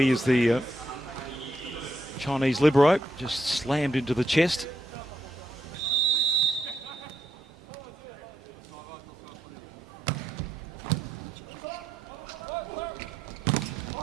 is the Chinese libero, just slammed into the chest.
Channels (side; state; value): both; normal; correlation 0.79